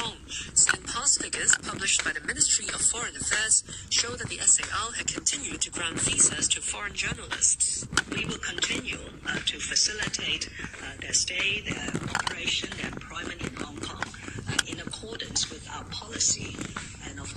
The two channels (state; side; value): identical; both; correlation 1.00